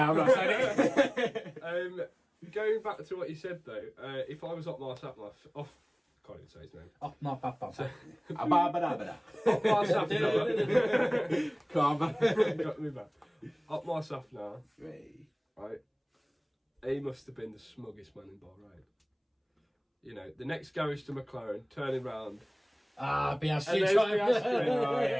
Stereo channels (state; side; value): identical; both; correlation 1.00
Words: not saying it. Going back to what you said though, if I was Otmar Sapna, can't even say his name. Otmar Otmar Sapna. Come on. Got me back. Otmar Sapna, right? He must have been the smuggest man in Bahrain. The next garage to McLaren, turning round. Piastri